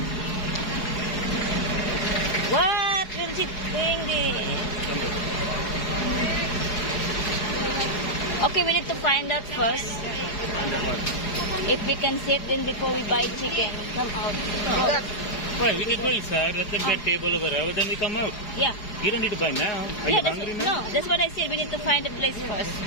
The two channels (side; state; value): right; late; 4.8 ms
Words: What will she bring this? Okay, we need to find out first if we can sit then before we buy chicken. Come out. Go. Why? We can go inside. Let them get table over there. Then we come out. Yeah. You don't need to buy now. Are Yeah, you hungry now? no, that's what I said. We need to find a place first.